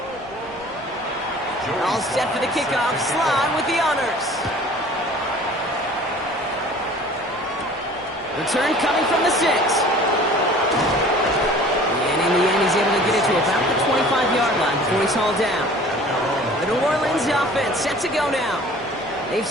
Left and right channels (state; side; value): normal; both; correlation 0.47